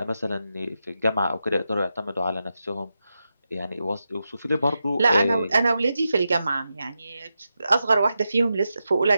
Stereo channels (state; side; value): inverted; both; correlation -0.89